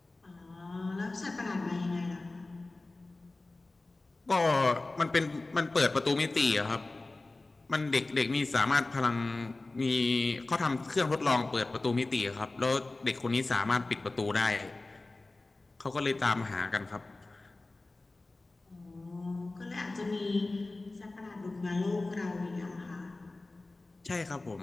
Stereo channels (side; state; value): right; quieter; 3.1 dB